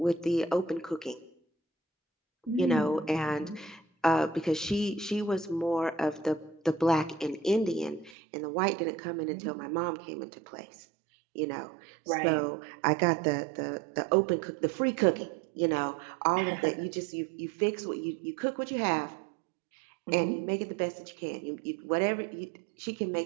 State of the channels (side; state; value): left; drops out; at 8.2 s